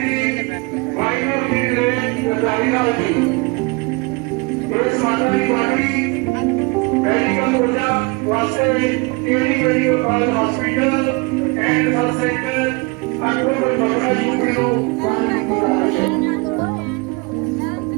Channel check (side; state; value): left; quieter; 28.1 dB